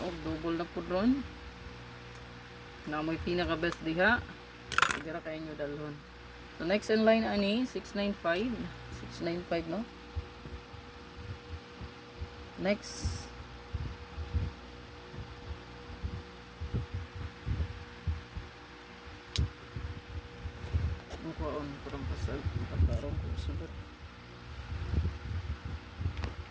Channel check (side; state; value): both; identical; correlation 1.00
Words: og double na po ron. Na mo'y pinaka best diha. Sigara kayo nyo dalhon. So, next in line ani, 695. 695 no? Next. Ang kuwaon, parang pasal. Pagkarong ko sugat.